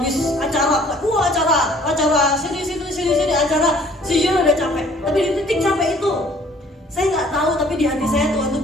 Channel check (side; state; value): both; normal; correlation 0.56